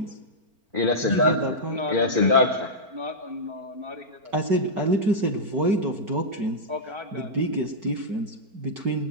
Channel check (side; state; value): left; late; 4.4 ms